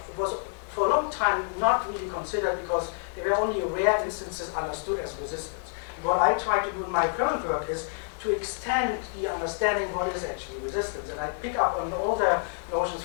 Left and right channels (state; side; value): silent; right; 57 dB below the other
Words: for a long time not really considered because there were only rare instances understood as resistance. And what I try to do in my current work is to extend the understanding what is actually resistance. And I pick up on all the notions